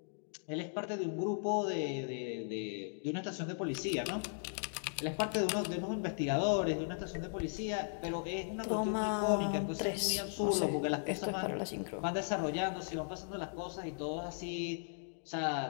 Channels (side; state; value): right; silent; digital silence